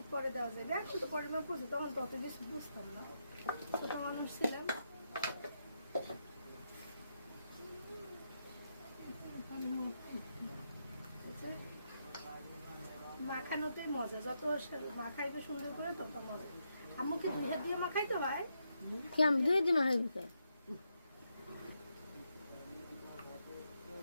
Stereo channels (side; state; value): both; inverted; correlation -0.82